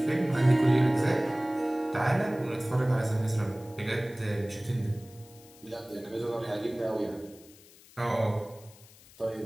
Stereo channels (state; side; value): noise; left; hiss, 24 dB below the sound